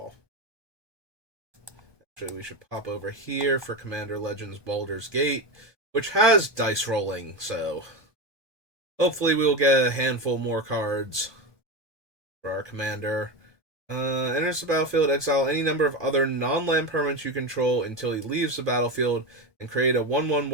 Actually, we should pop over here for Commander Legends Baldur's Gate, which has dice rolling, so hopefully we'll get a handful more cards for our commander. Enters the battlefield, exile any number of other non-land permanents you control until he leaves the battlefield, and create a 1/1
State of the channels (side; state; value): left; late; 1.2 ms